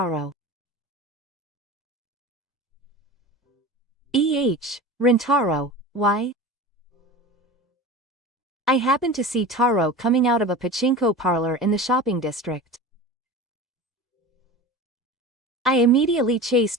Rintaro, why? I happened to see Taro coming out of a pachinko parlor in the shopping district. I immediately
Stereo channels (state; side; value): normal; both; correlation 0.33